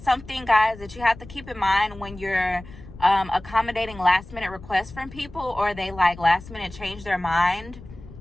guys, that you have to keep in mind when you're accommodating last minute requests from people, or they last minute change their mind.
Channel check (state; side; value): noise; left; rumble, 17 dB below the sound